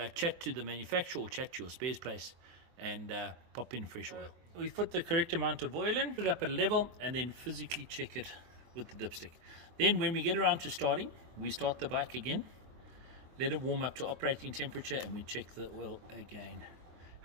chat to the manufacturer or chat to your spares place and pop in fresh oil. We put the correct amount of oil in, put it up at a level, and then physically check it with the dipstick. Then when we get around to starting, we start the bike again, let it warm up to operating temperature, and we check the oil again.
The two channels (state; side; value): late; left; 23 ms